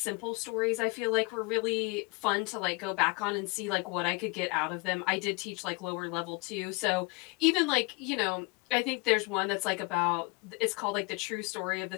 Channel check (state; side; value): quieter; right; 28.2 dB